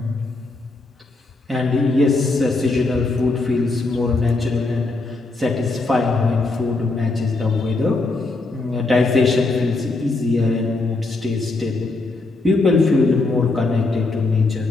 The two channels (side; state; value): right; quieter; 3.3 dB